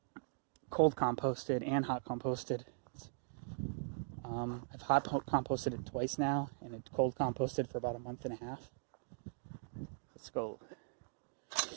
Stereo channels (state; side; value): silent; left; digital silence